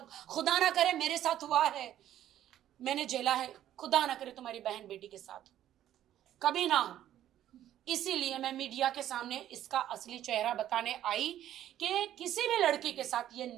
खुदा ना करे मेरे साथ हुआ है, मैंने झेला है, खुदा ना करे तुम्हारी बहन बेटी के साथ कभी ना हो। इसीलिए मैं मीडिया के सामने इसका असली चेहरा बताने आई कि किसी भी लड़की के साथ ये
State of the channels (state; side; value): quieter; left; 12.0 dB